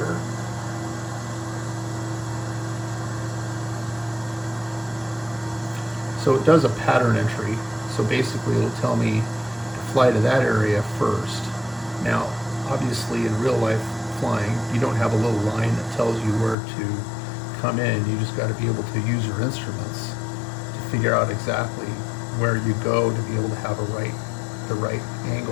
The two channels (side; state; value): right; drops out; at 16.6 s